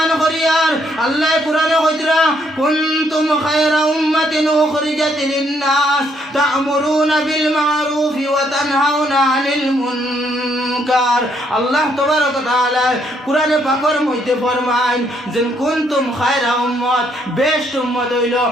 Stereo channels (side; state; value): both; normal; correlation 0.71